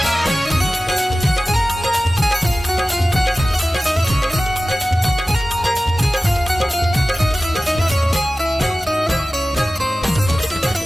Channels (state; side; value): normal; both; correlation 0.96